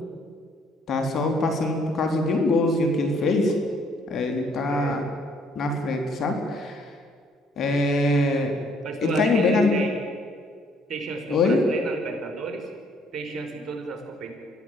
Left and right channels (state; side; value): normal; both; correlation 0.64